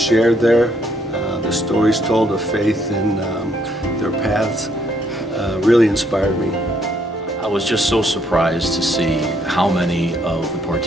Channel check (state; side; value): normal; both; correlation 0.70